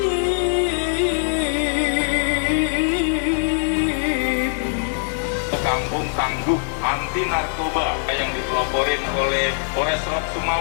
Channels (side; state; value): right; silent; 64 dB below the other